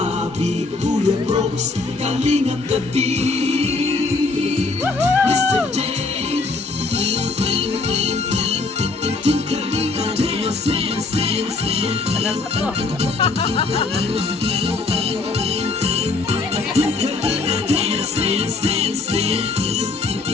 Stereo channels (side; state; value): right; quieter; 3.8 dB